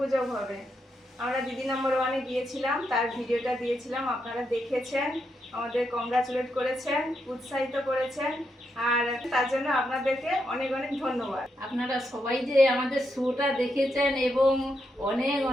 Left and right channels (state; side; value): normal; both; correlation 0.82